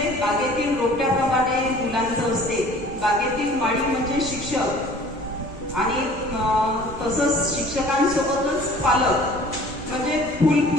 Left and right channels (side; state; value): right; noise; rumble, 16 dB below the sound